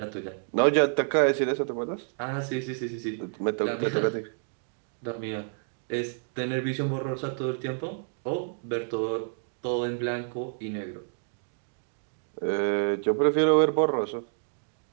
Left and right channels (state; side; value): silent; left; digital silence